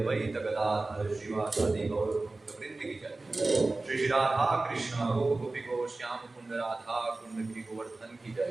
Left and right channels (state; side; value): quieter; left; 3.2 dB